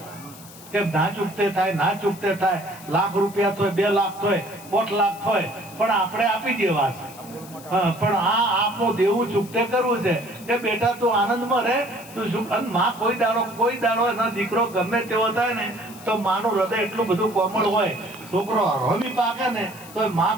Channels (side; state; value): left; noise; hiss, 19 dB below the sound